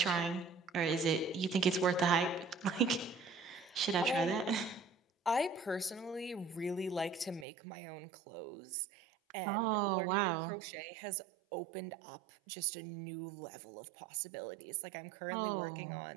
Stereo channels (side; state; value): left; drops out; at 7.5 s